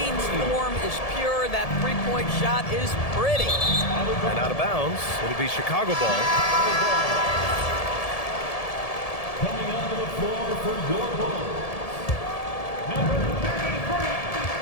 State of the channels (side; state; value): right; late; 1.7 ms